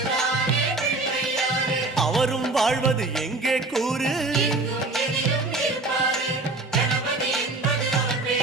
அவரும் வாழ்வது எங்கே கூறு?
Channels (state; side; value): quieter; left; 3.2 dB